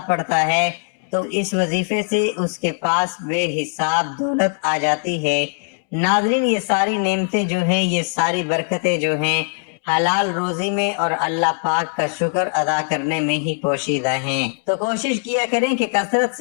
پڑھتا ہے تو اس وظیفے سے اس کے پاس بے حساب دولت آ جاتی ہے۔ ناظرین، یہ ساری نعمتیں جو ہیں، یہ ساری برکتیں جو ہیں، حلال روزی میں اور اللہ پاک کا شکر ادا کرنے میں ہی پوشیدہ ہیں۔ تو کوشش کیا کریں کہ کثرت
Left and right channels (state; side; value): silent; right; 65 dB below the other